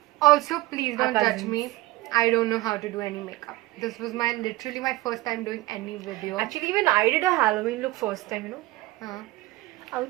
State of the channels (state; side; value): quieter; left; 18.8 dB